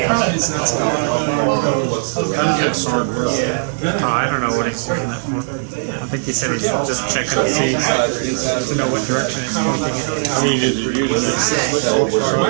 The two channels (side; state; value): left; silent; digital silence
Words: problem is that's not Oh, I don't know what he's using that for. I think he said he's just checking to see, to know what direction it's pointing in. I mean, is it using it?